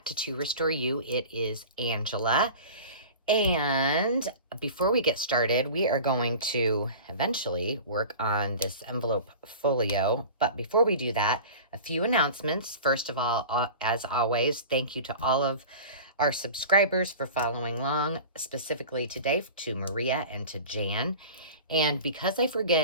to Restore You. It is Angela. And before we get started, we are going to eventually work on this envelope folio. But before we do that, a few announcements. First of all, as always, thank you to all of our subscribers for following along, specifically today to Maria and to Jan. And because I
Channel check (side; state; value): both; inverted; correlation -0.37